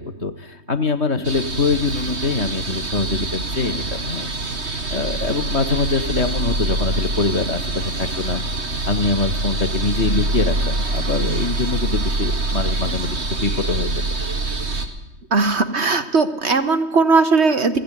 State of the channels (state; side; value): late; left; 3.2 ms